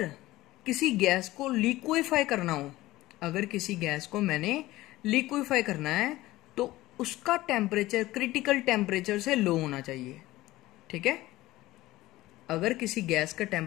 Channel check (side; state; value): right; quieter; 17.4 dB